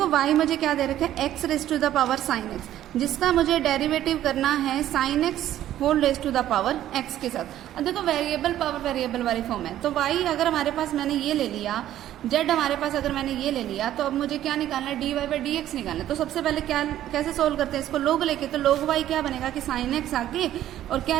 y मुझे क्या दे रखा है x raise to the power sine x, जिसका मुझे डेरिवेटिव करना है sine x whole raise to the power x के साथ। अब देखो वेरिएबल पावर वेरिएबल वाली फॉर्म है, तो y अगर हमारे पास मैंने ये ले लिया जेड हमारे पास अगर मैंने ये ले लिया तो अब मुझे क्या निकालना है, d y by d x निकालना है। तो सबसे पहले क्या कैसे सोल्व करते हैं इसको, लोग लेके, तो लोग वाई क्या बनेगा कि साइन एक्स आगे और क्या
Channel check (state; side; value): quieter; left; 12.5 dB